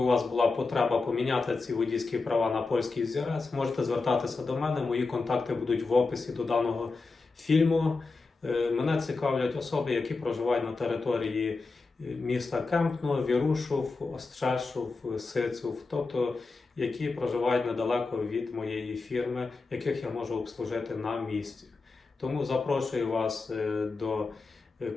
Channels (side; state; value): right; quieter; 4.0 dB